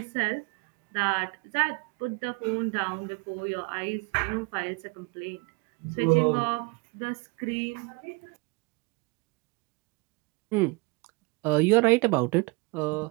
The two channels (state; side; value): quieter; left; 27.9 dB